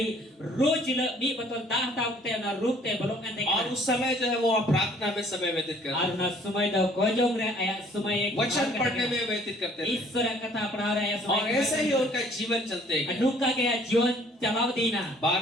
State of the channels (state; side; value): normal; both; correlation 0.58